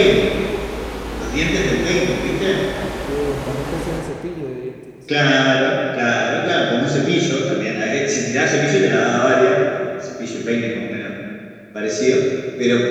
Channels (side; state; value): both; identical; correlation 1.00